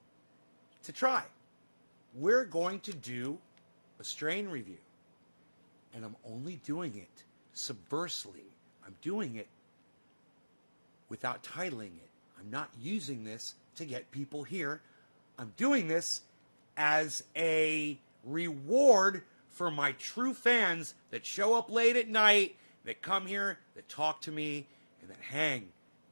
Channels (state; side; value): inverted; both; correlation -1.00